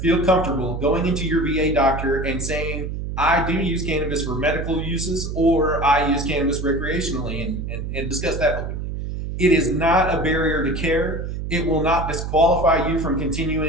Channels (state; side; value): noise; right; hum, 5 dB below the sound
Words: feel comfortable going into your VA doctor and saying, "I do use cannabis for medical uses, or I use cannabis recreationally," and discuss that openly. It is not a barrier to care. It will not disqualify you from